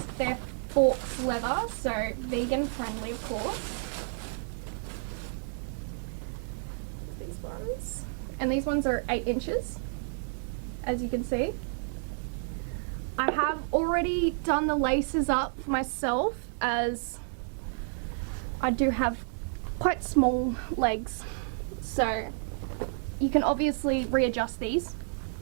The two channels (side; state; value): left; silent; digital silence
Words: they're faux leather, so vegan friendly of course. These ones. And these ones are 8 inches, as you can see. I have already done the laces up for myself as I do have quite small legs, so you can obviously readjust these